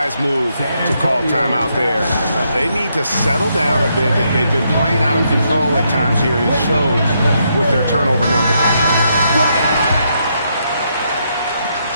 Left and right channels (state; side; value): inverted; both; correlation -0.77